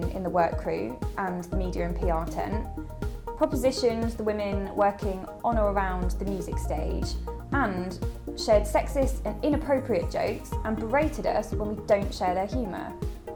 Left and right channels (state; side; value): identical; both; correlation 1.00